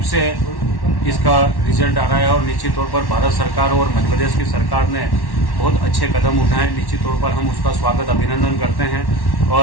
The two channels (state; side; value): late; right; 1.1 ms